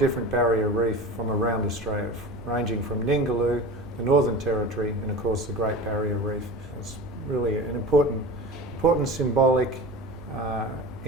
barrier reef from around Australia, ranging from Ningaloo, the Northern Territory, and of course the Great Barrier Reef. It's really an important symbolic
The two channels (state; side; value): normal; both; correlation 0.33